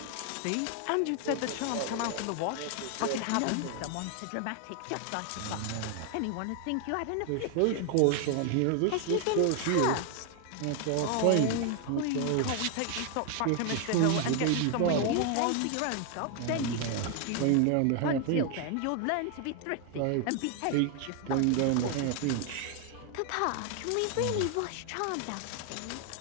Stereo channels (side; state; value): both; different; correlation 0.00